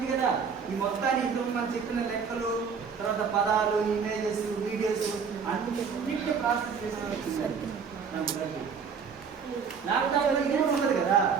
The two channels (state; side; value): quieter; left; 6.1 dB